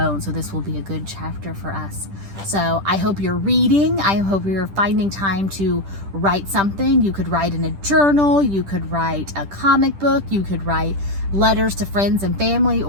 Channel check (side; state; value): left; late; 10 ms